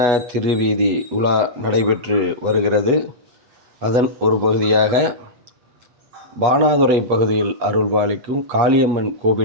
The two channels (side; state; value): left; late; 8.2 ms